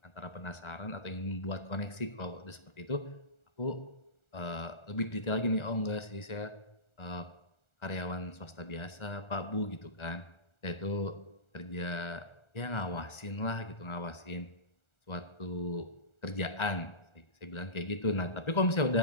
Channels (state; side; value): late; right; 1.4 ms